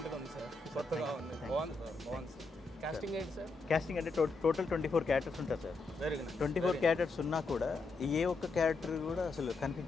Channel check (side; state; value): right; quieter; 3.7 dB